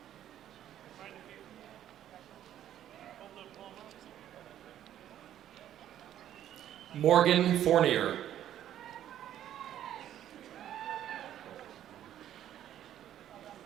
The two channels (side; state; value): left; quieter; 11.4 dB